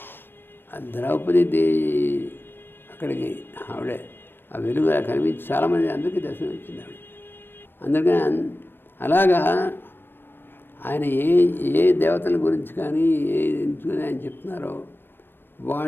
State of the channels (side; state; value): right; late; 0.098 ms